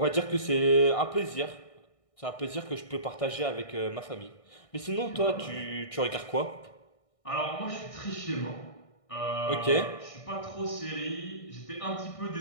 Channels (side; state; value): right; late; 1.6 ms